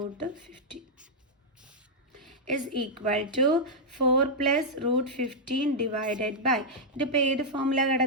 is equal to 4 plus √15 divided by ഇതിപ്പോൾ ഏത് ഫോമിലാണ്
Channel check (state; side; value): normal; both; correlation -0.06